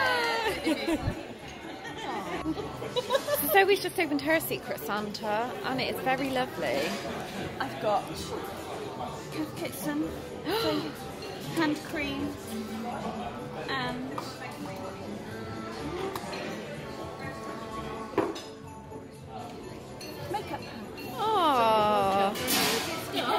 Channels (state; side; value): identical; both; correlation 1.00